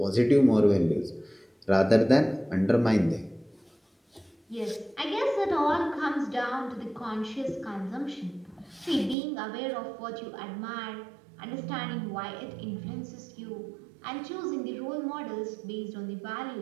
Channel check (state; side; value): drops out; left; at 9.2 s